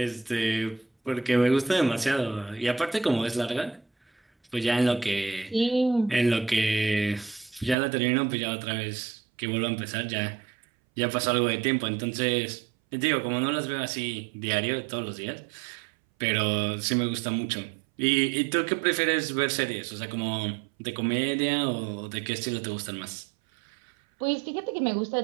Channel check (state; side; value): drops out; left; at 7.8 s